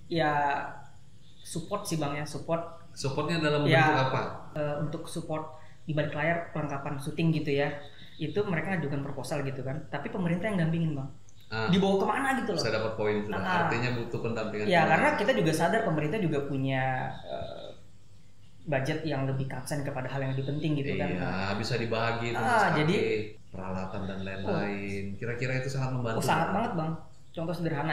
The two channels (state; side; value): identical; both; correlation 1.00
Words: Ya support sih bang ya, support. Supportnya dalam bentuk apa? Untuk support di balik layar perlengkapan syuting gitu ya, itu mereka ajukan proposal gitu kan, tapi pemerintah yang dampingin bang, dibawa kemana gitu loh. Saya dapat poin sudah. Artinya butuh pendampingan. Ya karena kita juga sadar pemerintah juga punya budget yang lebih concern kepada hal yang lebih penting gitu kan. Iya, bisa dibagi itu jadi peralatan dan lain-lain. Kira-kira itu sangat membantu. Sangat banget bang. Contoh sederhana